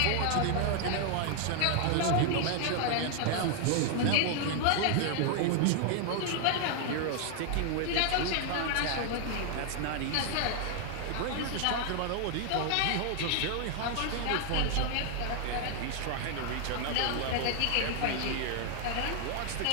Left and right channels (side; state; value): both; different; correlation 0.00